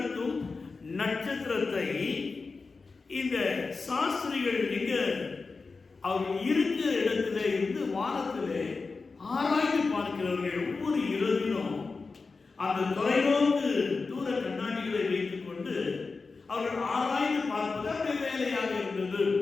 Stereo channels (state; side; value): quieter; right; 4.2 dB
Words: நட்சத்திரத்தை இந்த சாஸ்திரிகள் எங்க அவர் இருக்கிற இடத்துல இருந்து வானத்திலே ஆராய்ந்து பார்க்கிறவர்கள். ஒவ்வொரு இரவிலும் அந்த தொலைநோக்கு தூர கண்ணாடிகளை வைத்துக் கொண்டு அவர்கள் ஆராய்ந்து பார்ப்பது அவருடைய வேலையாக இருந்தது.